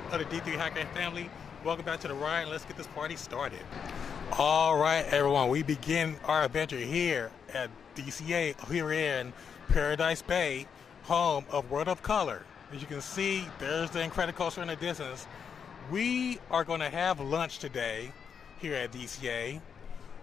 of the D3 Hacker family, welcome back to the ride, and let's get this party started. All right, everyone, we begin our adventure here at DCA, here in Paradise Bay, home of World of Color. As you can see, there's the Incredicoaster in the distance. We are going to have lunch today here at DCA.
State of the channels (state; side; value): quieter; right; 6.9 dB